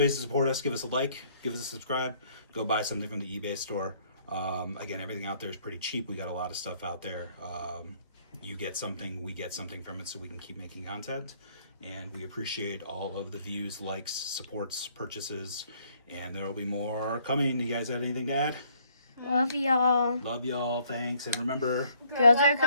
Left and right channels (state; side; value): inverted; both; correlation -0.64